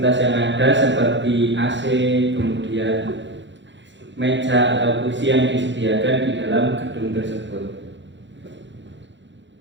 yang ada seperti AC, kemudian meja atau kursi yang disediakan di dalam gedung tersebut.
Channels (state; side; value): late; left; 0.53 ms